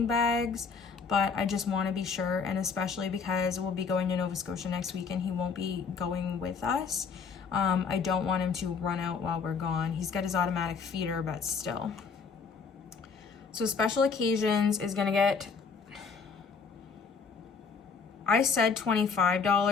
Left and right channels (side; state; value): right; quieter; 5.4 dB